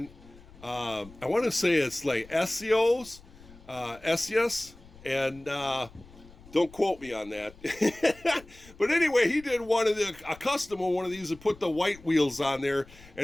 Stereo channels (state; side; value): noise; left; rumble, 22 dB below the sound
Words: I want to say it's like SEOs, and don't quote me on that. But anyway, he did a custom of one of these and put the white wheels on there,